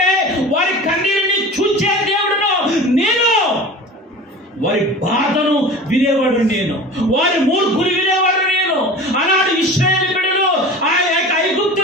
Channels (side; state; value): both; normal; correlation 0.36